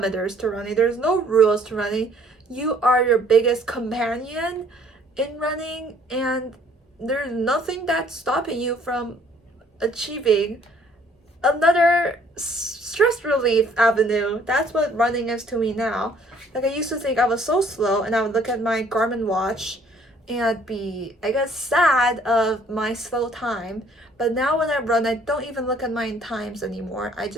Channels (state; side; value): normal; both; correlation 0.60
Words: to running. There's no rules to running. You are your biggest companion in running, and there's nothing that's stopping you from achieving another stress relief avenue. That's what running is to me now. Like, I used to think I was so slow, and I would look at my Garmin watch and I'd be, I guess, sad of my slow time. But now when I run, I don't even look at my times anymore. I